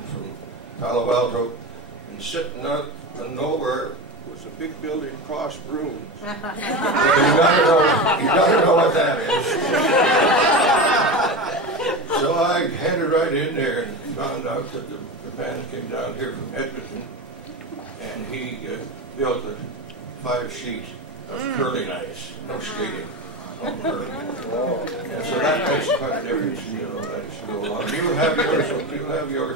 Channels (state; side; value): normal; both; correlation 0.23